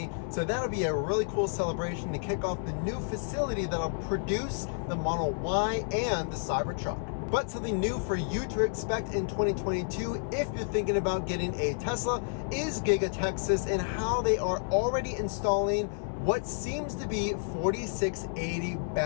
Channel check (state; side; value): silent; right; 58 dB below the other